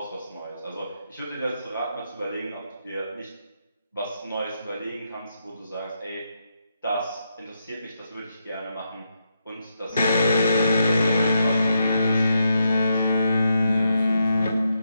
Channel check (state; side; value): inverted; both; correlation -0.82